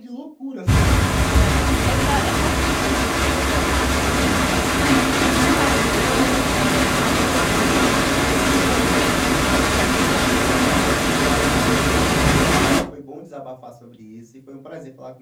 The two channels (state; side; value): identical; both; correlation 1.00